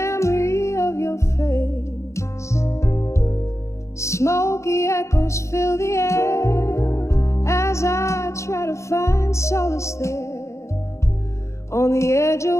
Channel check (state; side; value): late; right; 0.14 ms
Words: of your face. Smoky echoes fill the air as I try to find solace there, on the edge